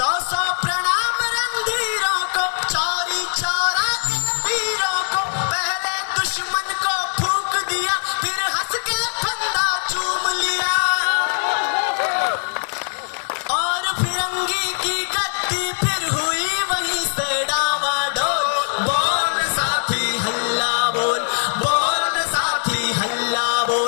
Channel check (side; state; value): right; silent; digital silence